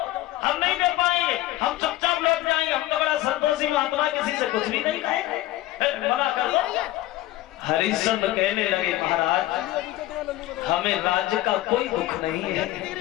हम नहीं दे पाएंगे, हम चुपचाप लौट जाएंगे, हम तो बड़ा संतोषी महात्मा, किसी से कुछ भी नहीं खाएंगे, मना कर दो। हरिश्चंद्र कहने लगे, महाराज हमें राज्य का कोई दुख नहीं है।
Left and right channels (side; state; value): right; quieter; 16.0 dB